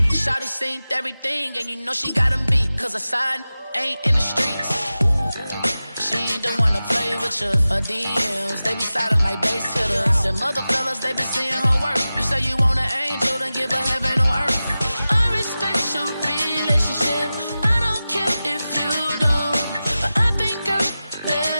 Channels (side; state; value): both; inverted; correlation -0.95